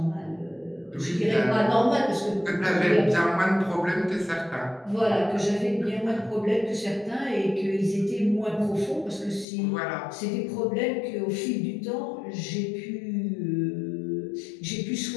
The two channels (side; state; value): right; drops out; at 9.5 s